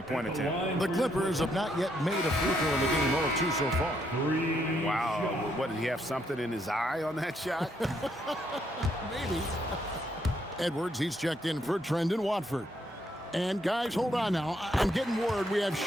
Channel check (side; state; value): both; normal; correlation 0.74